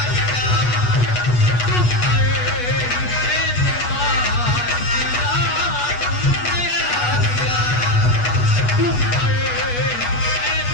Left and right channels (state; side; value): late; right; 8.2 ms